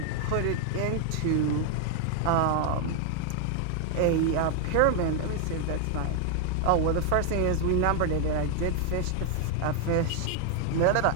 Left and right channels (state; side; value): different; both; correlation 0.00